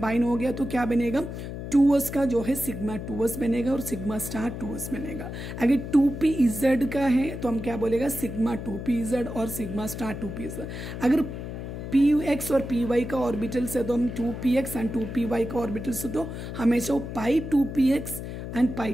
हो गया तो क्या बनेगा, 2s का जो है सिग्मा 2s बनेगा और सिग्मा स्टार 2s बनेगा। अगर 2pz का है तो हम क्या बोलेगा, सिग्मा 2pz और सिग्मा स्टार 2pz। अगर px और py का ऑर्बिटल से तो हम 2px एंड 2py का ऑर्बिटल से तो हमेशा वो π2px एंड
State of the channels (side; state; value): left; noise; hum, 7 dB below the sound